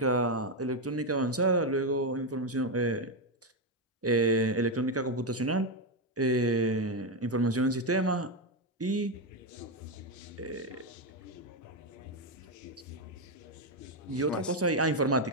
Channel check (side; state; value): both; normal; correlation 0.06